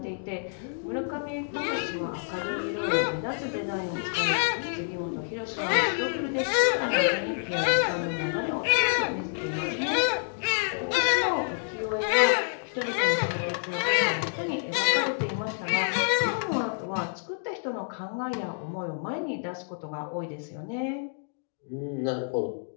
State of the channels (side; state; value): right; silent; digital silence